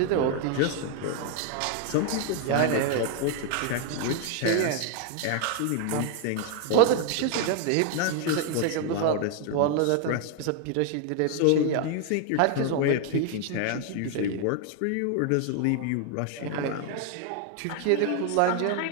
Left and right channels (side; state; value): both; different; correlation 0.01